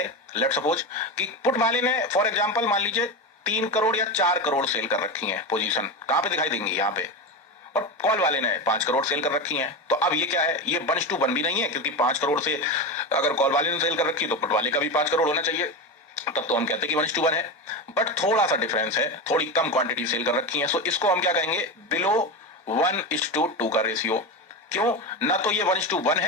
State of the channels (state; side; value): normal; both; correlation 0.19